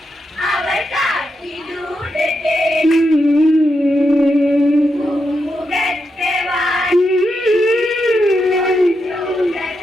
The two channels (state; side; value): normal; both; correlation 0.84